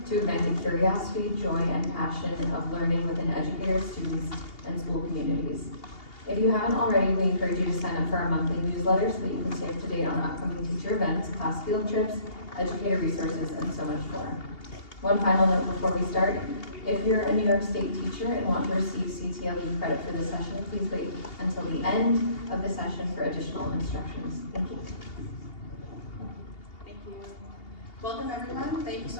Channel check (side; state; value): right; late; 2.8 ms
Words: to ignite the curiosity, joy, and passion of learning within educators, students, and school communities. If you haven't already, we encourage you to sign up for our monthly newsletter so that you can stay up to date on upcoming teacher events, class field trips, educator resources, and so much more. One final note before we start. If you're a New York State teacher and want to receive CTLE credit for this session, please wait until the end of the session for additional instructions. Thank you. Thank you. Welcome everyone. Thank you